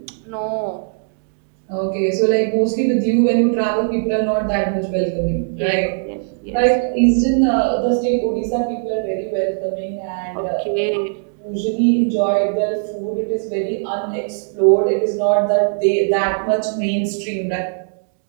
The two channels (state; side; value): silent; left; digital silence